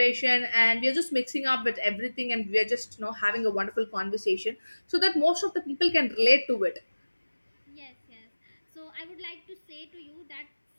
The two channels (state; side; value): inverted; both; correlation -1.00